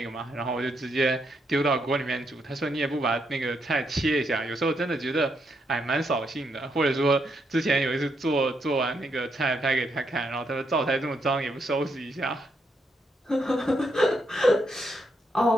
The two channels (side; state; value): both; normal; correlation 0.78